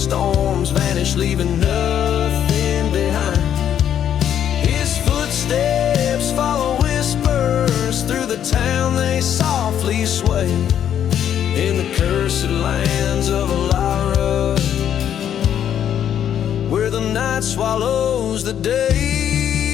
storms vanish, leaving nothing behind. His footsteps follow whispers through the town, they softly sway. In the cursed lands of Alara, where the night swallows the day.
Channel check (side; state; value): right; quieter; 9.7 dB